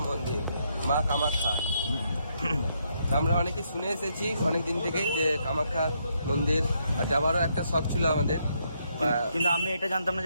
মন্দির, মা কামাখ্যা। আমরা অনেকে শুনে এসেছি অনেকদিন থেকেই যে কামাখ্যা মন্দির, আর যাবারও একটা শখ ছিল আমাদের, কিন্তু আমি এটা জানতাম না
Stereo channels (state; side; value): inverted; both; correlation -0.76